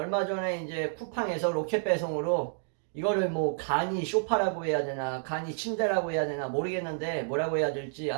전에 이제 쿠팡에서 로켓 배송으로 이거를 뭐 간이 쇼파라고 해야 되나 간이 침대라고 해야 되나 모르겠는데 뭐라고 해야 될지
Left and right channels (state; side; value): silent; left; digital silence